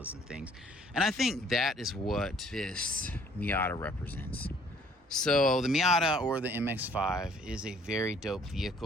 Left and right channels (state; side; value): normal; both; correlation 0.59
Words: and things. And I think that is what this Miata represents. So the Miata, or the MX-5, is a very dope